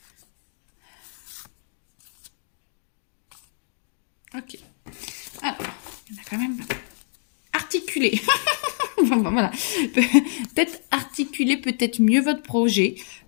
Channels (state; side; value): silent; right; digital silence